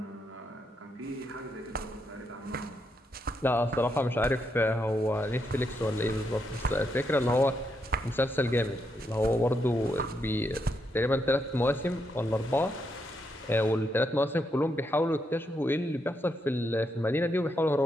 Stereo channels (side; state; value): both; normal; correlation 0.80